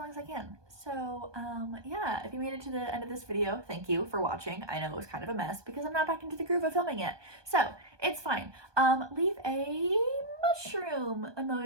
as I can. So yeah, if you made it to the end of this video, thank you for watching. I know it was kind of a mess because I'm not back into the groove of filming yet, so it's fine. Leave a mushroom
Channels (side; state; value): left; late; 1.2 ms